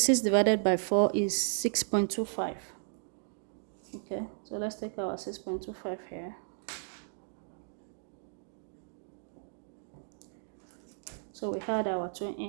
divided by 4 is 6.25. Okay, so let's take our 6.25 here. So we had our 2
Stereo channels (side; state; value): left; silent; digital silence